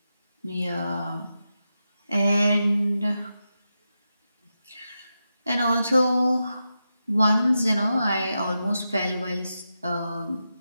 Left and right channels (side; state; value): both; inverted; correlation -0.89